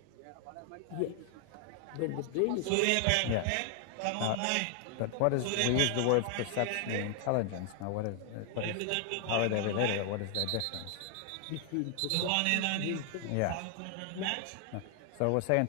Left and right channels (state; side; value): different; both; correlation 0.00